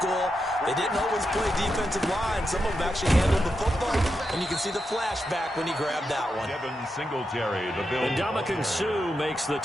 They didn't always play defensive line. Some of them actually handled the football, and you can see the flashback when he grabbed that one. Devin Singletary, the Bills. And Ndamukong Suh makes the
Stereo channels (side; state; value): both; normal; correlation 0.86